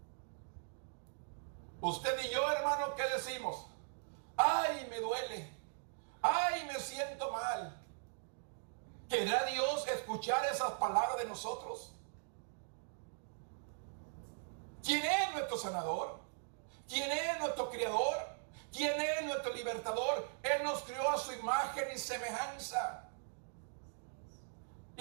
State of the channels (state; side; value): silent; left; digital silence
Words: Usted y yo, hermano, ¿qué decimos? ¡Ay, me duele! ¡Ay, me siento mal! ¿Querrá Dios escuchar esas palabras de nosotros? ¿Quién es nuestro sanador? ¿Quién es nuestro criador? ¿Quién es nuestro libertador? Él nos crió a su imagen y semejanza,